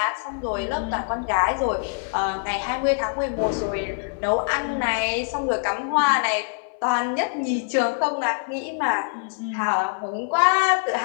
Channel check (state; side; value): silent; right; 62 dB below the other